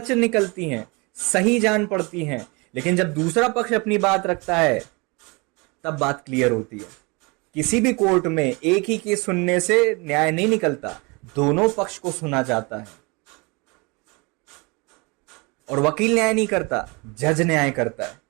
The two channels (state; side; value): quieter; left; 28.2 dB